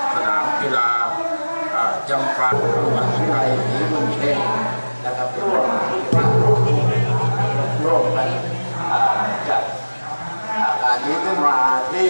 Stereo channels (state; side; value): inverted; both; correlation -1.00